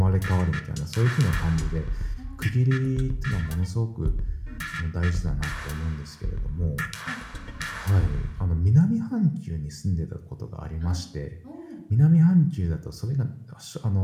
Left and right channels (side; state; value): both; identical; correlation 1.00